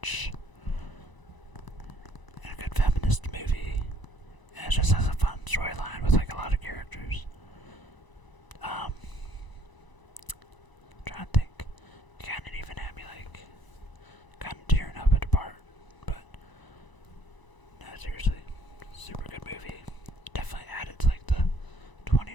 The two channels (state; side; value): late; right; 1.0 ms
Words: And a good feminist movie. And it just has a fun storyline with a lot of characters. Trying to think. You kind of even had me kind of tearing up at the part. But no, seriously, super good movie. Definitely added to the